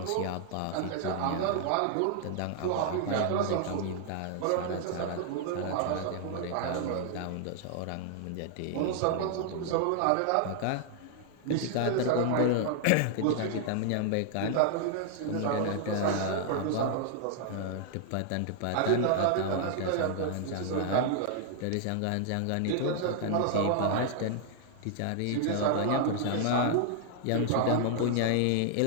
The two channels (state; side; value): different; both; correlation -0.01